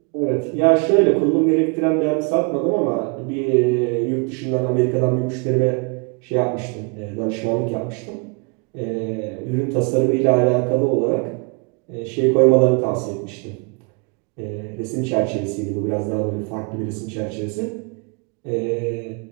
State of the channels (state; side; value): quieter; left; 34.5 dB